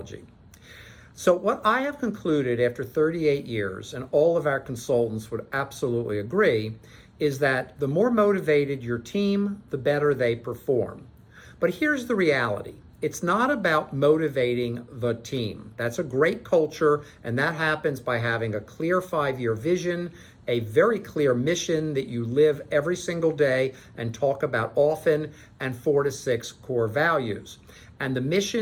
So what I have concluded after 38 years, and all of our consultants would absolutely agree, is that the more motivated your team, the better they perform. But here's the reality. It's not about motivating the team. That's a great culture, and that happens by having a clear 5-year vision, a very clear mission that you live every single day and talk about often, and 4 to 6 core values. And the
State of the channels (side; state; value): both; identical; correlation 1.00